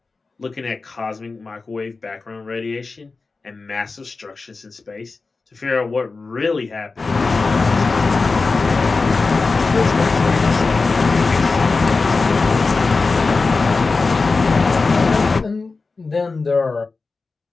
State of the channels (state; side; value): quieter; right; 4.0 dB